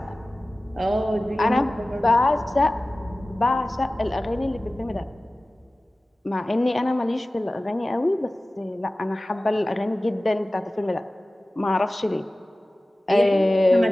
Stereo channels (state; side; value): normal; both; correlation 0.97